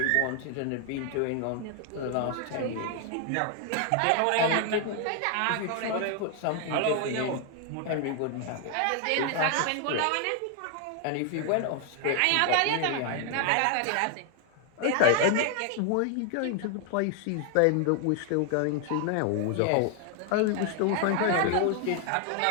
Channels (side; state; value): both; different; correlation 0.00